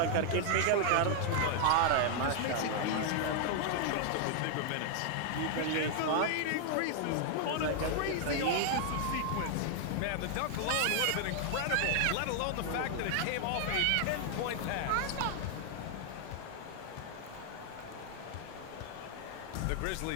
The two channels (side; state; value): both; different; correlation 0.00